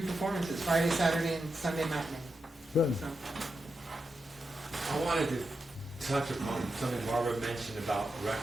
performances, Friday, Saturday, and Sunday matinee. Good. So, I wanted to touch upon something Barbara mentioned about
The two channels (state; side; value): normal; both; correlation 0.88